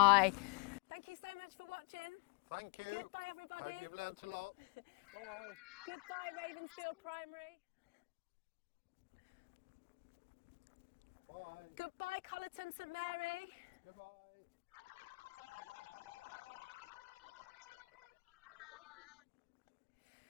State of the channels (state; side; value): quieter; right; 31.3 dB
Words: Thank you so much for watching. Thank you. Goodbye, everybody. Hope you've learnt a lot. Bye. Goodbye, Ravensfield Primary. Bye. Goodbye, Collerton St Mary. Goodbye.